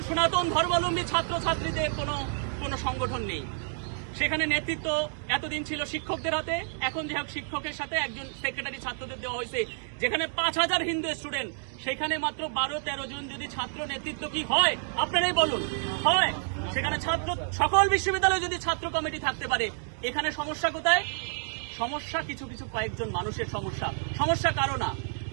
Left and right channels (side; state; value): left; silent; digital silence